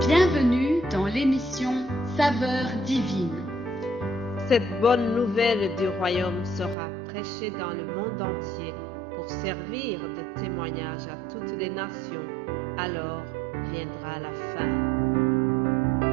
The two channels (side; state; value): left; drops out; at 6.8 s